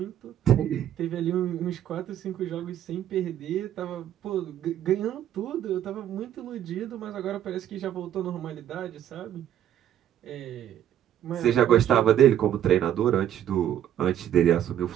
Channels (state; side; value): quieter; left; 10.9 dB